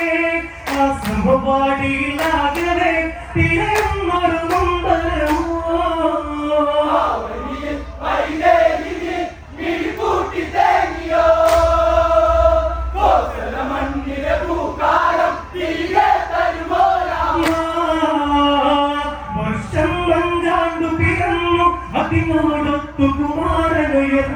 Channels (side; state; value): both; identical; correlation 1.00